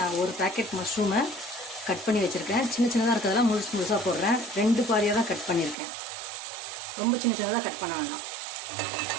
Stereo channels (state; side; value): drops out; left; at 5.8 s